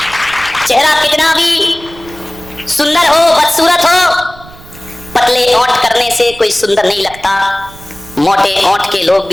चेहरा कितना भी सुंदर हो, बदसूरत हो, पतले ओंठ करने से कोई सुंदर नहीं लगता। मोटे ओंठ के लोग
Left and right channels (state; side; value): noise; right; rumble, 20 dB below the sound